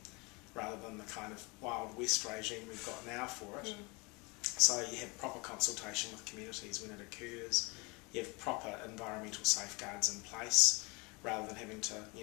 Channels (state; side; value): quieter; right; 27.9 dB